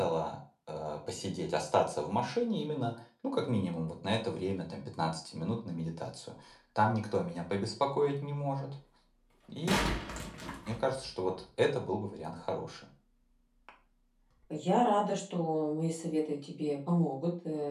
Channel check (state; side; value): identical; both; correlation 1.00